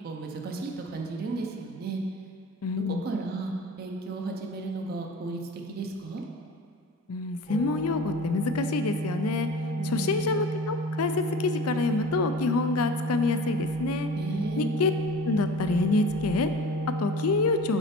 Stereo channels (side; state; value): both; normal; correlation 0.39